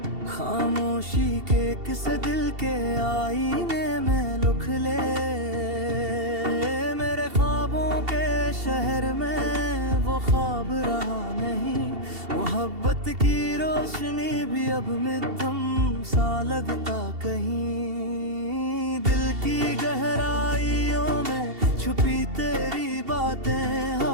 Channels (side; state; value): left; late; 2.7 ms